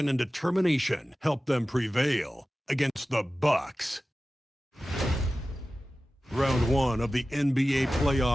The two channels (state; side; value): normal; both; correlation 0.95